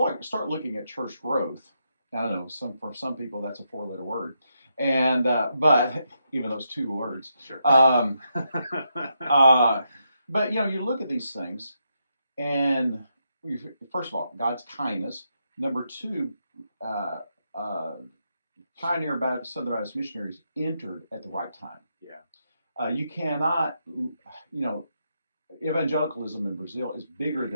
start looking at church growth, I don't know, for some people that's a 4-letter word, and but even those 2 words. Sure. But you look at these things, and first of all, God's kindness. Number 2, Southern Baptist missionaries entered at the right time. Yeah. You cannot, evangelicalism in Brazil is bigger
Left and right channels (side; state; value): both; inverted; correlation -0.82